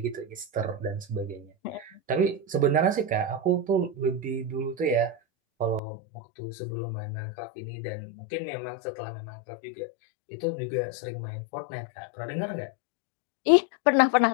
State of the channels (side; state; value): right; drops out; at 5.8 s